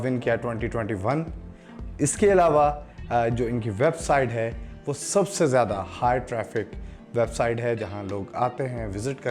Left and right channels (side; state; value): both; identical; correlation 1.00